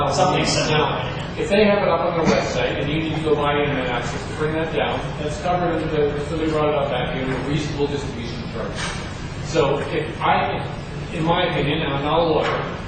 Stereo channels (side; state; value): both; identical; correlation 1.00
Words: Something similar. If they have it up on their website and you need to go buy internet access to bring that down, that's covered under so they brought it up back here in a reasonable distribution charge. So in my opinion, and I'm not a lawyer,